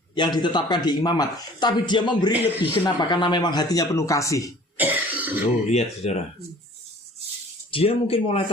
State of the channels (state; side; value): normal; both; correlation 0.49